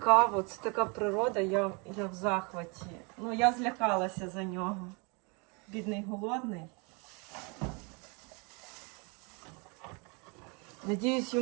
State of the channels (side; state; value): left; quieter; 31.6 dB